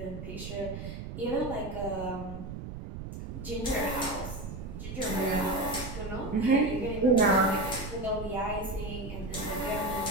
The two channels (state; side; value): noise; right; rumble, 9 dB below the sound